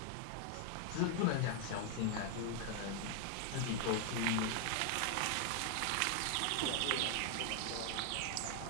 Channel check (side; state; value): both; different; correlation 0.00